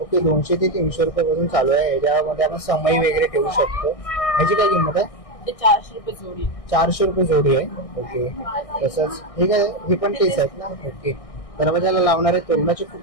ओके, 200 ते 300 रुपयापासून चालू आहे. याच्यामध्ये आपण समय वगैरे ठेवू शकतो. ह्याची काय किंमत आहे? ते 400 रुपये जोडी. 400 रुपये जोडी आहे. ओके, तसंच हे काय, हे पण तेच आहेत ना? ओके, दरवाजाला लावणारे तोरणाचे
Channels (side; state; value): right; late; 1.6 ms